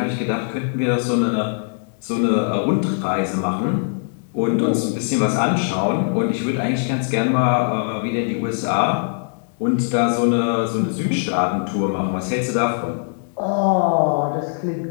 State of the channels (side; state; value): right; silent; digital silence